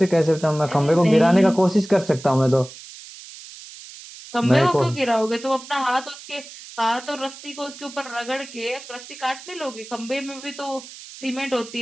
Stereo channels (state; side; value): noise; right; hiss, 16 dB below the sound